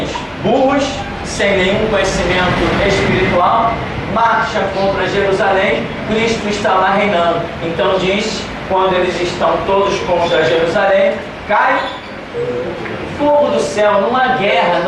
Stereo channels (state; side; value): identical; both; correlation 1.00